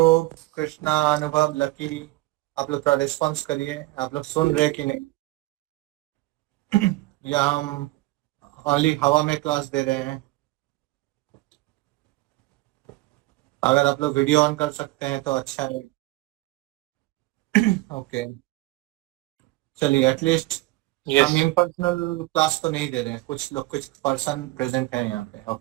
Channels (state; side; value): quieter; left; 20.2 dB